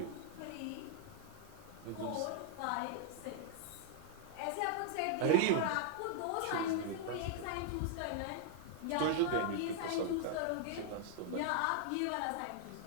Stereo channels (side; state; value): both; different; correlation -0.01